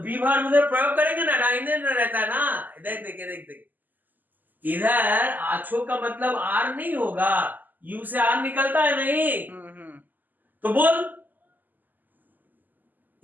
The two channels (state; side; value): late; left; 0.086 ms